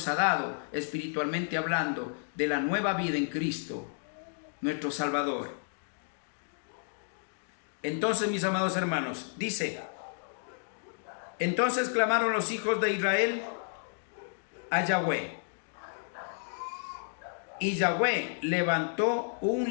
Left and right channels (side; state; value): right; silent; digital silence